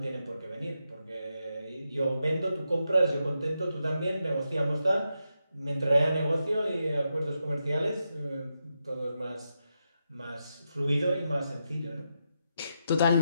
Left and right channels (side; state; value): both; inverted; correlation -0.85